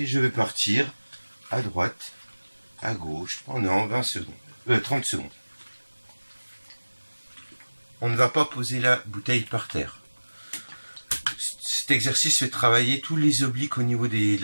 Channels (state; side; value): inverted; both; correlation -1.00